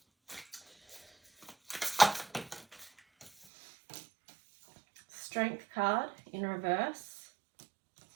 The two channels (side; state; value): left; drops out; at 3.5 s